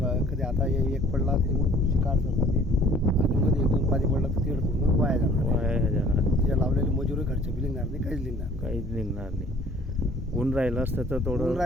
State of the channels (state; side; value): normal; both; correlation 0.53